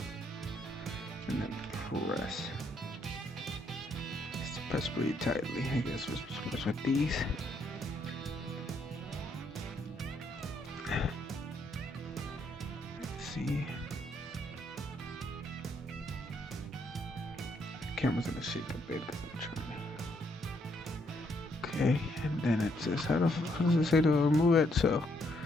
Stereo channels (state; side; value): normal; both; correlation 0.73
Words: And then press. Just press pretty tightly. I guess we're supposed to press with these. Let's see. The camera's gonna shake a bit because I'm trying to. Okay, and then it says how does it say to remove it? So